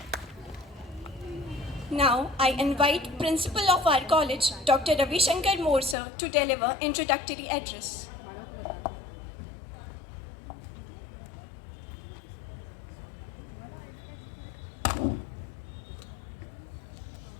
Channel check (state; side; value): drops out; right; at 6.0 s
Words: Now, I invite Principal of our college, Dr. Ravi Shankar Morsa, to deliver introductory address.